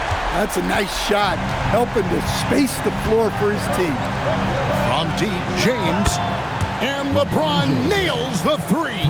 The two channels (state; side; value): identical; both; correlation 1.00